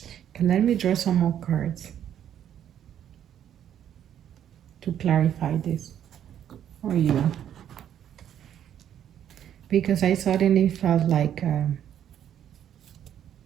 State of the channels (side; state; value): left; quieter; 10.1 dB